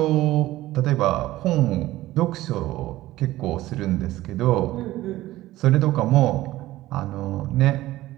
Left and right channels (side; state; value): left; quieter; 16.3 dB